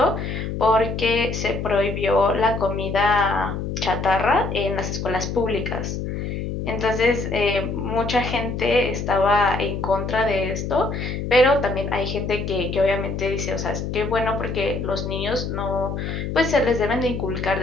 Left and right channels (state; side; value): noise; left; hum, 4 dB below the sound